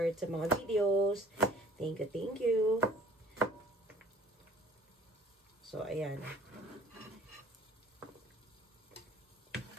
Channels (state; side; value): normal; both; correlation 0.52